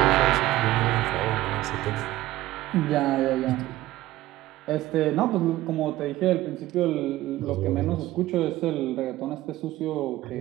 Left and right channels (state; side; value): quieter; left; 16.3 dB